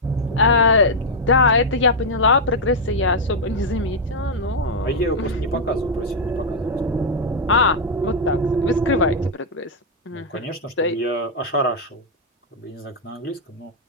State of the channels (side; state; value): both; normal; correlation -0.03